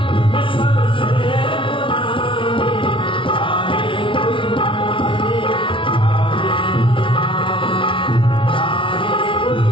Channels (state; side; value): late; right; 0.25 ms